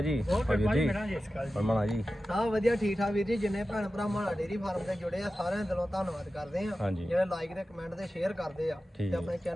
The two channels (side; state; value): both; normal; correlation 0.94